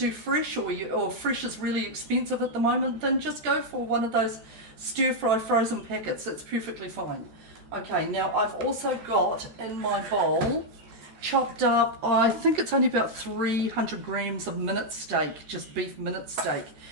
fresh, or fresh is really expensive at the moment, then just go for one of those stir fry frozen packets. It's perfectly fine. Okay, now I've also got in my bowl chopped up, I think it's only about 300 grams of minute steak, just beef minute steak,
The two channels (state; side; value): late; left; 13 ms